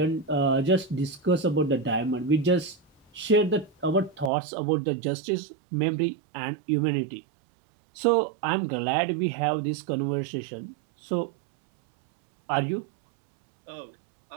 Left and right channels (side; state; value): left; drops out; at 4.3 s